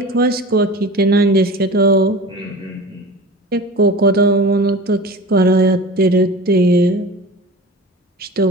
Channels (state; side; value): normal; both; correlation 0.36